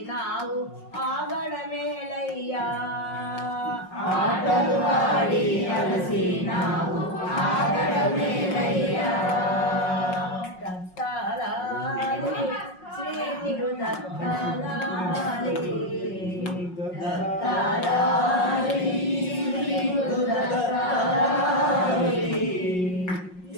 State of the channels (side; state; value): right; late; 5.5 ms